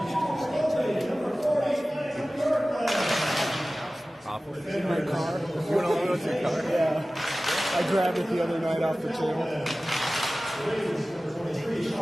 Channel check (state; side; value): normal; both; correlation 0.97